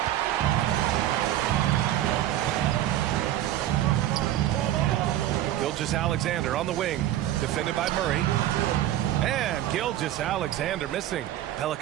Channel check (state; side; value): quieter; left; 13.0 dB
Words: Gilgeous-Alexander on the wing, defended by Murray. And Gilgeous-Alexander missing.